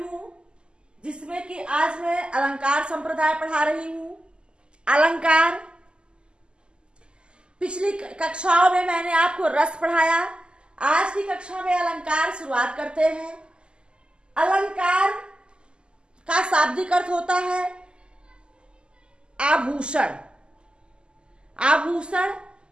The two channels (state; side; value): late; left; 0.049 ms